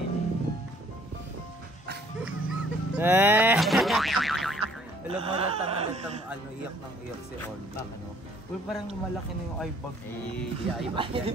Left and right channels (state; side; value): normal; both; correlation 0.59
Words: Alam mo, latang iyak ng iyak si Olga. Uy, parang malaki na yung eyebag. Di eyebag yan. Di